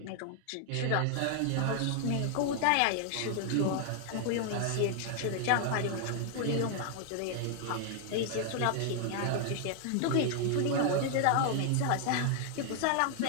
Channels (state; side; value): different; both; correlation 0.00